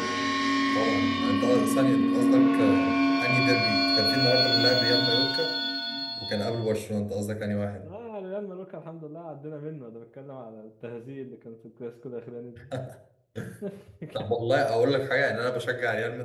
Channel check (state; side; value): identical; both; correlation 1.00